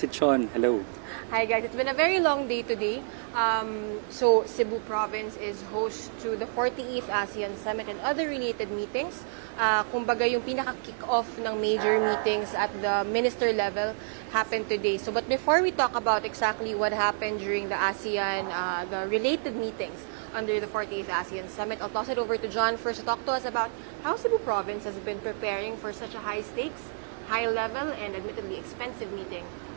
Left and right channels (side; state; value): left; silent; digital silence